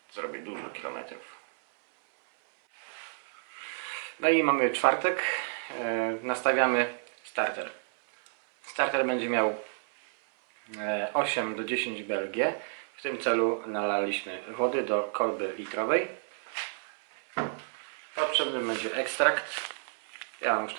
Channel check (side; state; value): left; silent; 57 dB below the other